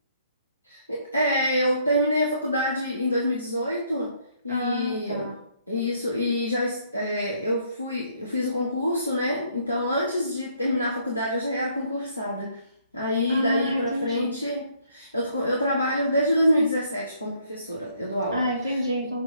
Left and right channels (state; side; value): inverted; both; correlation -0.67